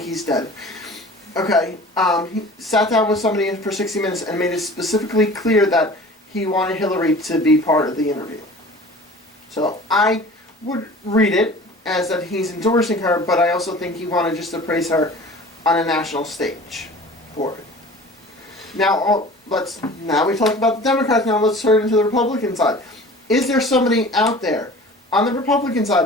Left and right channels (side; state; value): both; normal; correlation 0.42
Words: he's dead. Okay. He sat down with somebody for 60 minutes and made it specifically clear that he wanted Hillary to be part of the interview. So I would read it as that he's endorsing her, but I also think he wanted just to praise her on a national stage for it. Now we talked about the Democrats. Now let's turn into the Republican side. Is there somebody out there on the Republican